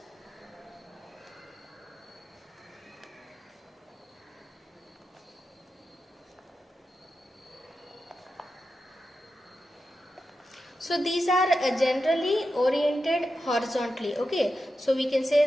So these are generally oriented horizontally. Okay, so we can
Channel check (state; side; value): normal; both; correlation 0.90